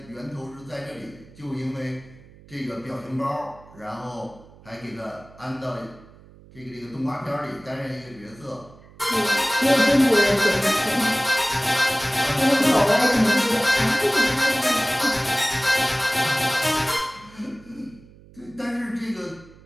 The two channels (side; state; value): right; noise; hum, 23 dB below the sound